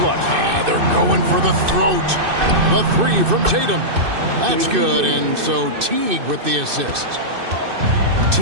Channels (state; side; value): late; left; 2.6 ms